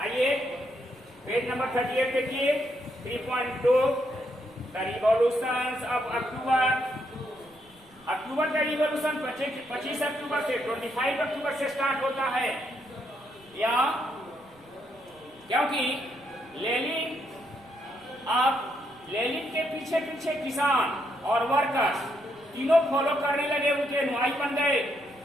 पेज नंबर 38 देखिए, 3.2 द रिवॉल्यूशन ऑफ अक्टूबर का रिवॉल्यूशन 25 अक्टूबर से 25 अक्टूबर से स्टार्ट होता है। या क्योंकि लेनिन के पीछे पीछे किसान और वर्कर्स तीनों फॉलो करने लगे, उनके अनुयायी बन गए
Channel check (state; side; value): noise; right; rumble, 30 dB below the sound